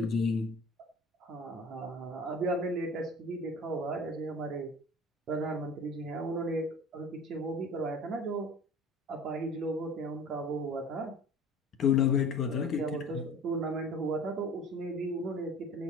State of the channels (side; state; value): both; normal; correlation 0.41